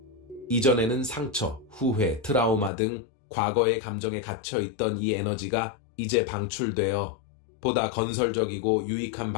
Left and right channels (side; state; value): right; drops out; at 2.7 s